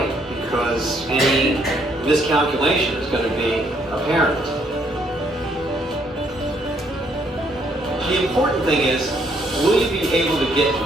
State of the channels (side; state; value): both; normal; correlation 0.69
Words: because any miscalculation is going to be apparent. The important thing is, will you be able to get